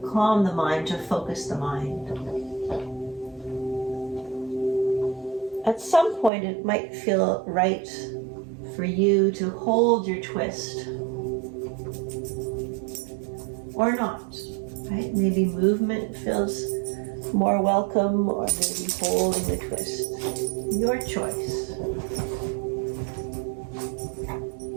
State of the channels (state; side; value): drops out; left; at 6.3 s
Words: calm the mind, to focus the mind. At some point, it might feel right for you to hold your twist. Or not, right? Maybe movement feels more welcome, or maybe holding the twist. Your choice.